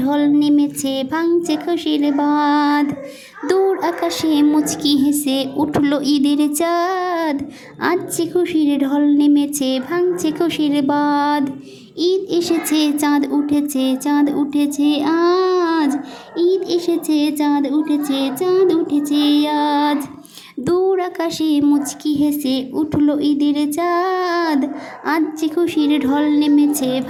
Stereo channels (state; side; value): identical; both; correlation 1.00